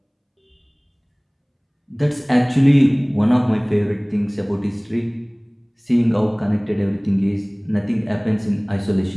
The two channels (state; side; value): identical; both; correlation 1.00